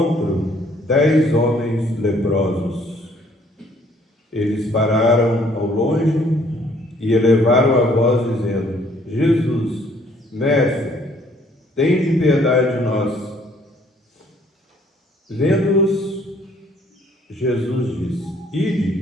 10 homens leprosos. Eles pararam ao longe e elevaram a voz dizendo: Jesus, Mestre, tende piedade de nós. Vendo-os, Jesus disse:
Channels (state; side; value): normal; both; correlation 0.62